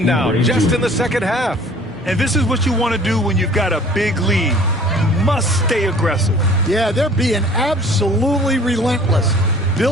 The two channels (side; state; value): both; normal; correlation 0.50